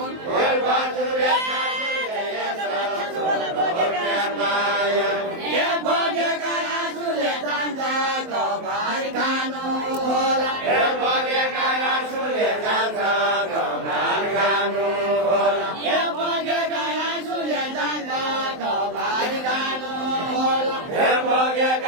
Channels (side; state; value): left; late; 23 ms